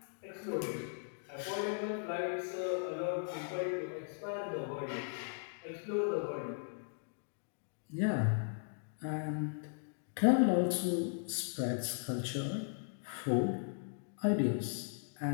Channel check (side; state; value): right; silent; digital silence